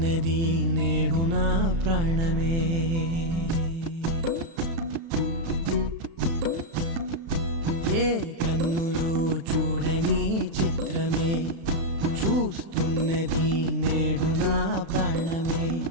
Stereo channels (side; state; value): left; late; 36 ms